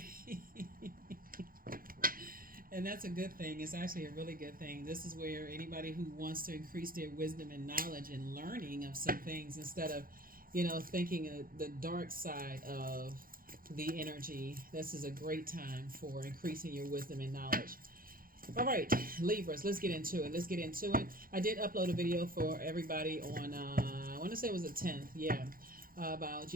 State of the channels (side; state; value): left; late; 0.42 ms